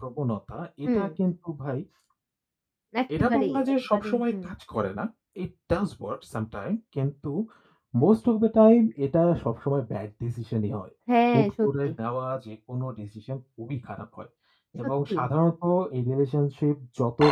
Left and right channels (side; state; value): both; identical; correlation 1.00